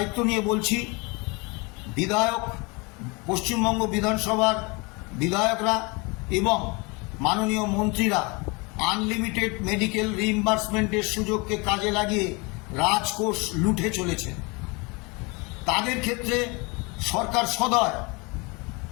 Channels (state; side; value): quieter; right; 28.1 dB